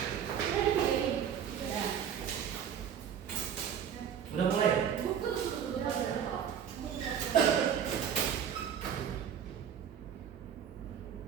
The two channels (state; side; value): quieter; left; 8.5 dB